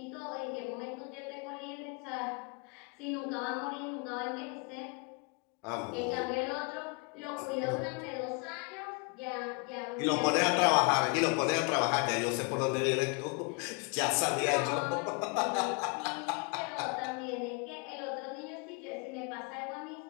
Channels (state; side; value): quieter; right; 31.5 dB